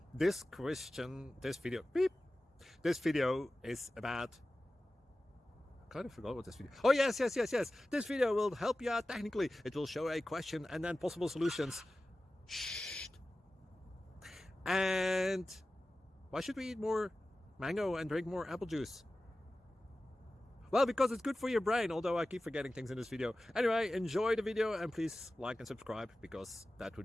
this video is about, I kind of forgot what this video. Oh, yes. This video will help you out technically. It will show a question and then possible solutions. Shh. And why should we eat more mango and drink more apple juice? Well, because it's good for your brain, although I keep forgetting things in this video. Anyway, enjoy the video and please like and subscribe, because that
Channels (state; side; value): normal; both; correlation 0.95